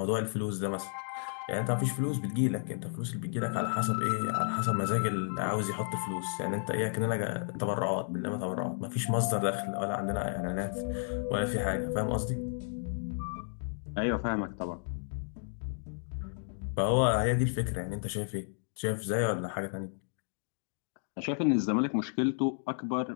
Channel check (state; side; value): silent; right; digital silence